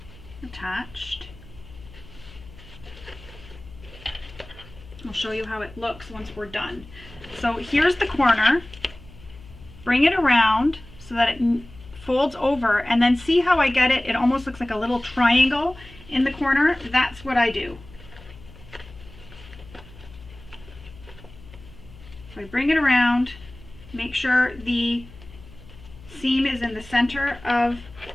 attached. I'll show you how it looks once we're done. So here's the corner. Bring it around so that it folds over, and then see how I get it? It almost looks like a little triangle in the corner. That's what I do. So I bring it around, make sure the seam is in the center of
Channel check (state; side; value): noise; left; hum, 20 dB below the sound